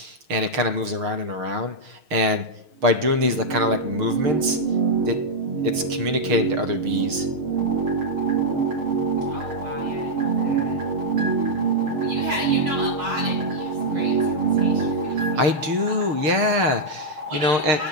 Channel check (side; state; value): left; late; 6.5 ms